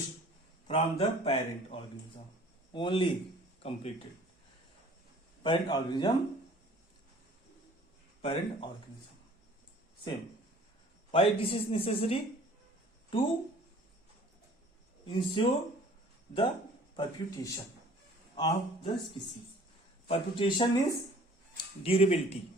from the parent organism. Only completed. Parent organism. Same. Why this is necessary? To ensure the perpetuation of the species. Perpetuation is durability,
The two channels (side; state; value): both; normal; correlation 0.51